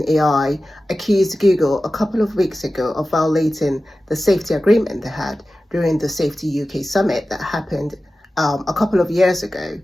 AI, accused Google a couple of weeks ago of violating the safety agreement they had during the Safety UK summit that happened a couple of years ago.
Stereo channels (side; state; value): both; normal; correlation 0.95